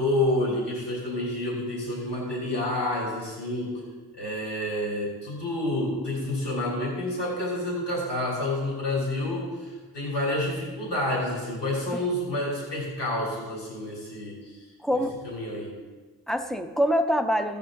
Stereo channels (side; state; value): both; normal; correlation 0.34